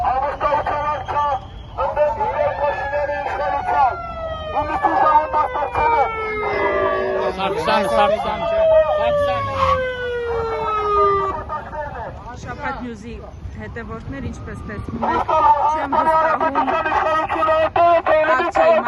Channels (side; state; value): both; identical; correlation 1.00